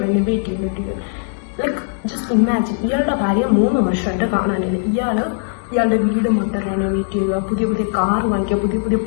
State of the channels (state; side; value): silent; right; 64 dB below the other